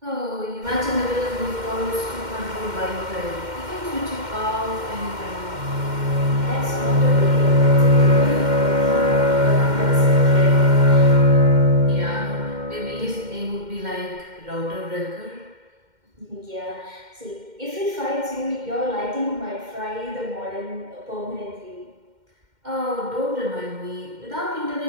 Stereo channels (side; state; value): left; late; 2.1 ms